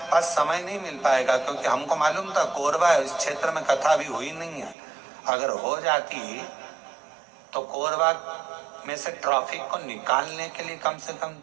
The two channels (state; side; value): drops out; left; at 4.8 s